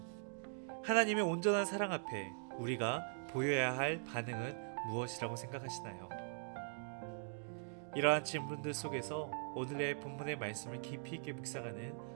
하나님의 온전한 사랑 앞에 우리가 보여야 할 반응은 무엇이라고 생각하시나요? 이러한 질문들 속에서 오늘의 본문의 말씀을 깊이 있게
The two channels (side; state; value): left; silent; digital silence